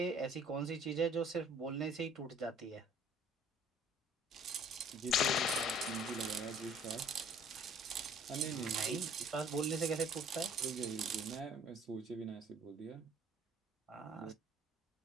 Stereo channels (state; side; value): normal; both; correlation 0.54